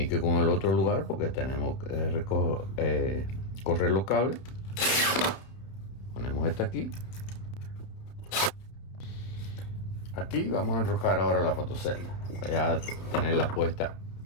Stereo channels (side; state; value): right; late; 31 ms